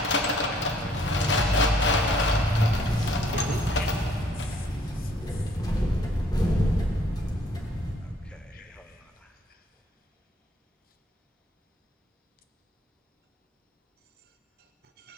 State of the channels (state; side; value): normal; both; correlation 0.62